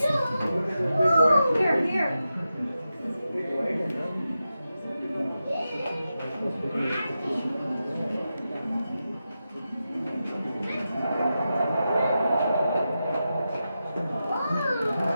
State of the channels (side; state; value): both; inverted; correlation -0.90